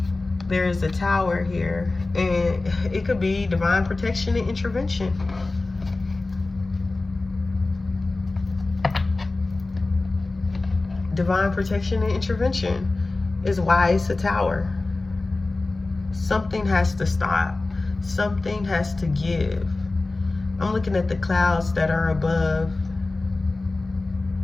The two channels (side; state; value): right; quieter; 3.3 dB